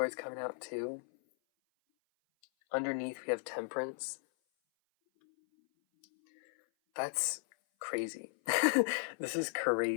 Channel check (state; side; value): silent; right; 54 dB below the other